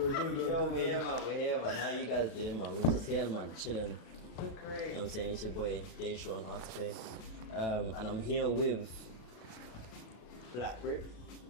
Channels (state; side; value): late; right; 36 ms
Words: good. Yo, we're here, man. How you guys doing, man? We're just here, man, chilling. We're great. You know what I'm saying? It's your boy, Dhey on Artopé. And I'm here with Black Brit.